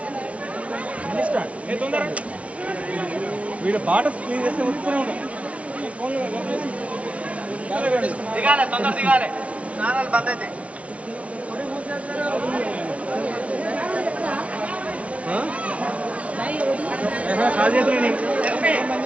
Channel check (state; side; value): late; left; 0.064 ms